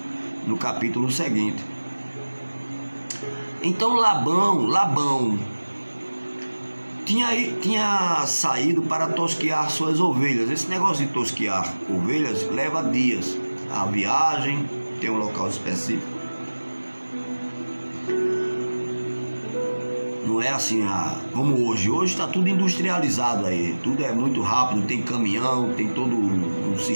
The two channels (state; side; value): inverted; both; correlation -1.00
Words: no capítulo seguinte. Então Labão tinha saído para tosquear suas ovelhas. Esse negócio de tosquear ovelhas leva dias. A viagem tem um local específico. Não é assim como hoje. Hoje está tudo industrializado aí. Tudo é muito rápido, tem caminhão, tem todo um